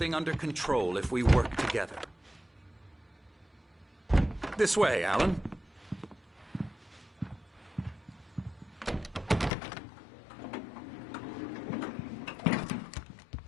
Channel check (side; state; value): right; drops out; at 9.5 s